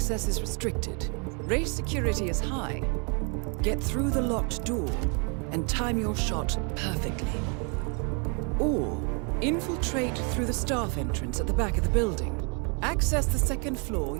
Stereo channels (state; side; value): quieter; left; 36.4 dB